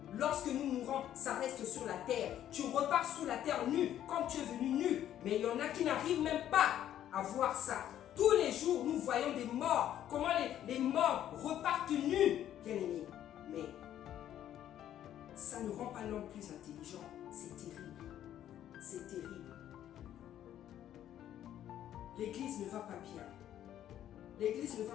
Lorsque nous mourons, ça reste sur la terre. Tu repars sur la terre nu, comme tu es venu nu. Mais il y en a qui n'arrivent même pas à voir ça. Tous les jours, nous voyons des morts. Comment les morts repartent nus, bien aimés. Mais ça ne rend pas l'homme plus intelligent. C'est terrible. C'est terrible. L'église ne va pas bien. L'église ne va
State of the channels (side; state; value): right; quieter; 11.3 dB